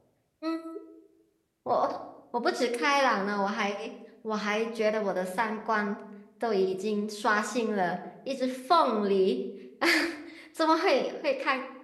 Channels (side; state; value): both; identical; correlation 1.00